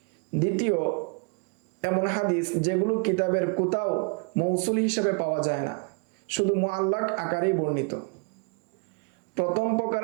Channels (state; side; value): quieter; left; 36.9 dB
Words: দ্বিতীয়, এমন হাদিস যেগুলো কিতাবের কোথাও মৌসুল হিসেবে পাওয়া যায় না, শুধু মুআল্লাক আকারেই বর্ণিত। প্রথম